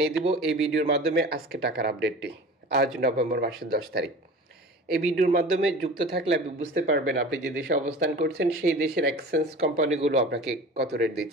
দিব এই ভিডিওর মাধ্যমে আজকে টাকার আপডেটটি। আজ নভেম্বর মাসের 10 তারিখ। এই ভিডিওর মাধ্যমে যুক্ত থাকলে আপনি বুঝতে পারবেন আপনি যে দেশে অবস্থান করছেন সেই দেশের এক্সচেঞ্জ কোম্পানিগুলো আপনাকে কত রেট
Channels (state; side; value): normal; both; correlation 0.38